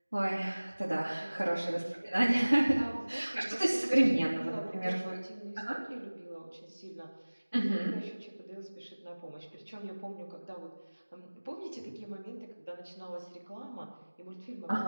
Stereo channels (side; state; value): both; inverted; correlation -1.00